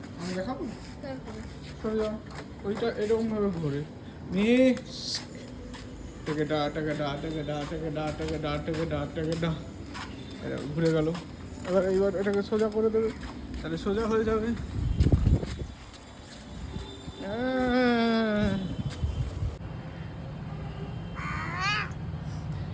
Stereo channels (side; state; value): both; identical; correlation 1.00